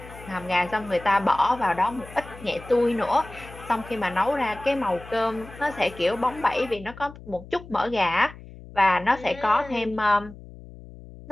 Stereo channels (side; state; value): left; noise; hum, 17 dB below the sound